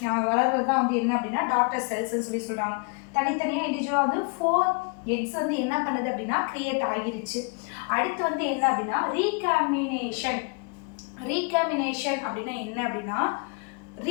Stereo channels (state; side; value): quieter; right; 34.4 dB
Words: வளர்றது தான் வந்து என்ன அப்படின்னா டாட்டர் செல்ஸ்ன்னு சொல்கிறாங்க. தனித்தனியாக இண்டிவிஜுவலாக வந்து 4 எக்ஸ் வந்து என்ன பண்ணுது அப்படின்னா கிரியேட் ஆகிருச்சு. அடுத்து வந்து என்ன அப்படின்னா ரீகாம்பினேஷன் அப்படின்னா என்ன அப்படின்னா